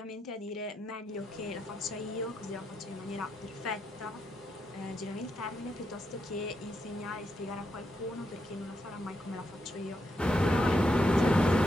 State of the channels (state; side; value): normal; both; correlation 0.82